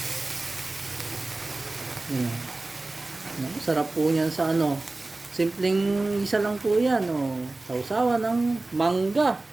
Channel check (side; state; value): left; quieter; 3.1 dB